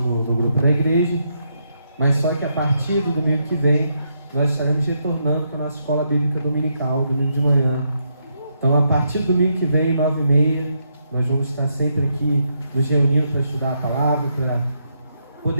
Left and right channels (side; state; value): both; inverted; correlation -0.79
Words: grupo da igreja, mas só que a partir do domingo que vem nós estaremos retornando para a nossa escola bíblica dominical, domingo de manhã. Então, a partir do domingo que vem, 9h30, nós vamos estar sempre aqui nos reunindo para estudar a palavra, para